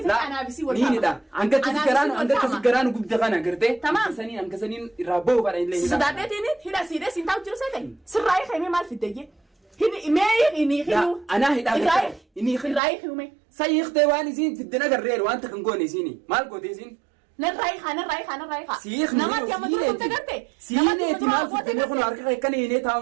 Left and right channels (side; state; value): left; drops out; at 12.8 s